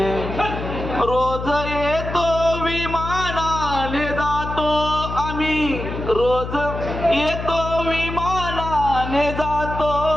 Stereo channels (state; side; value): noise; left; hum, 7 dB below the sound